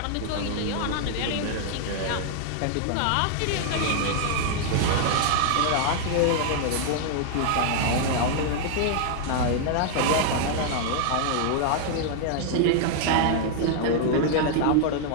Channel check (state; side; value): different; both; correlation 0.00